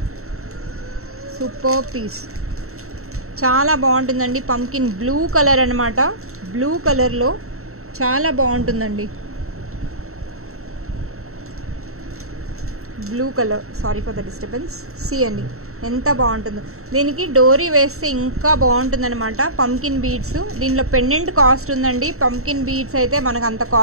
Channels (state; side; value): late; left; 0.63 ms